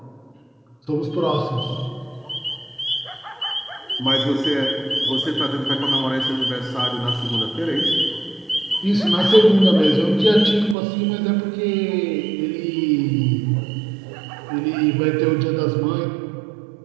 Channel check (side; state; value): left; drops out; at 10.8 s